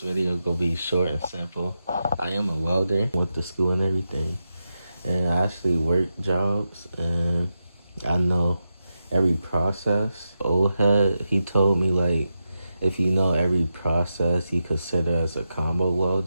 video gonna be short and simple. I am a welder, went to school and everything, and I actually work jobs, and I know every process. Old head, he told me like, if you know every process, you consider as a combo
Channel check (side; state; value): both; inverted; correlation -0.88